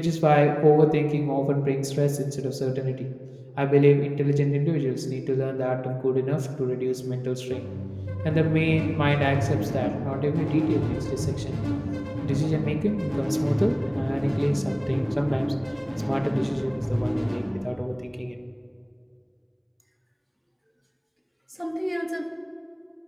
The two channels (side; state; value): both; identical; correlation 1.00